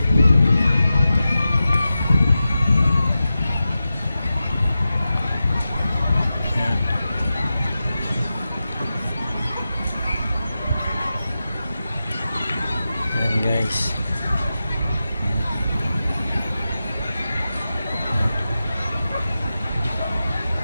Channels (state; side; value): inverted; both; correlation -0.92